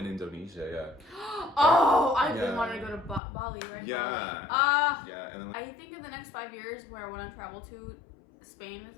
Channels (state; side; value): drops out; right; at 3.2 s